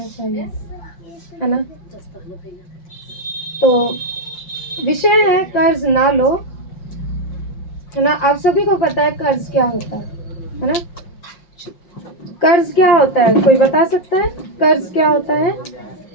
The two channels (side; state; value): right; late; 5.6 ms